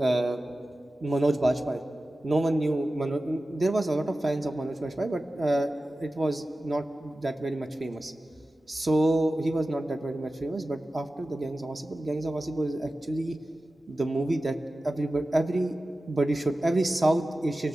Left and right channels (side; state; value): both; normal; correlation 0.95